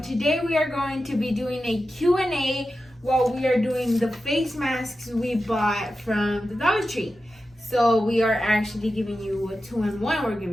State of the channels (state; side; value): normal; both; correlation 0.92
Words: today we are going to be doing a Q&A while we are doing the face masks we bought from the Dollar Tree. So we are actually giving you a 2-in-1. We're